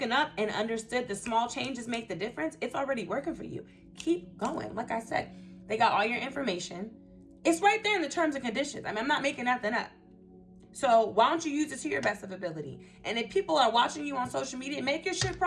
up and understood the small changes make the difference, it's already working for you. Keep going. Like I said, they got all your information. It's right there in the terms and conditions. I mean, I'm not making nothing up. So why don't you use it to your best of ability? And if people are watching you on social media, make your shit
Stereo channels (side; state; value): both; identical; correlation 1.00